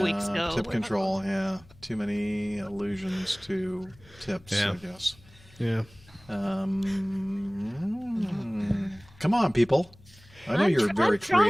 weeks ago. Tip control, yeah. Too many allusions to tips, I guess. Yeah. Come on, people. I know you're very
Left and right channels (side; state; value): left; noise; hum, 25 dB below the sound